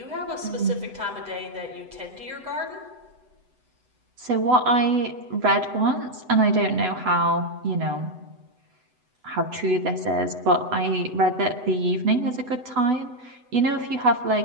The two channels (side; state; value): left; late; 8.0 ms